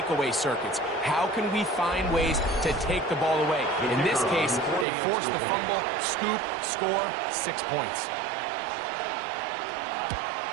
circuits. How can we find ways to take the ball away? In this case, they force the fumble, scoop, score, 6 points.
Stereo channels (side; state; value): left; drops out; at 4.9 s